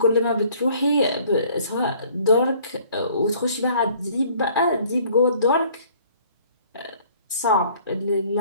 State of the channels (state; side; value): inverted; both; correlation -0.56